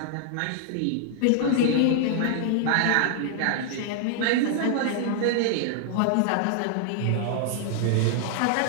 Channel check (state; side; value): different; both; correlation -0.01